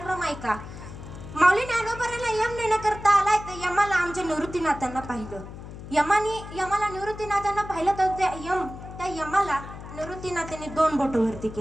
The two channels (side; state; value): left; noise; hum, 12 dB below the sound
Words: ऐका. माऊली ज्ञानोबारांना यम नेण्याकरता आलाय तर यमाला आमच्या निवृत्तीनाथांना पाहिलं. यमाला निवृत्तीनाथांना पाहिलं तर त्या यमाला निवृत्तीनाथांनी 2 बोट वरती